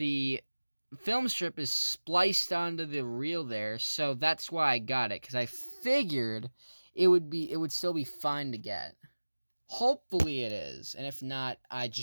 film strip is spliced onto the reel there, so that's why I got it, because I figured it would still be fine to get. Hopefully it is, and if not, I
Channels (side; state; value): both; inverted; correlation -1.00